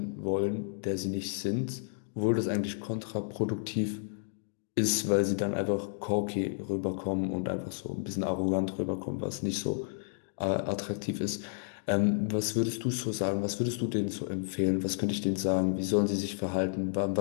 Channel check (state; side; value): silent; right; digital silence